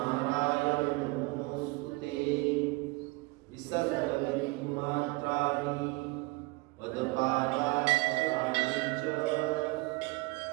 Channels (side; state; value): left; quieter; 24.4 dB